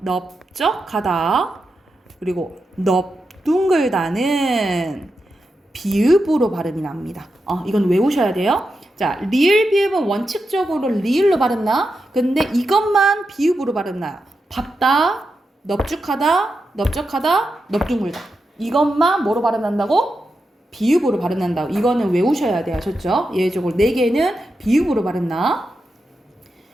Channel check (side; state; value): both; normal; correlation 0.88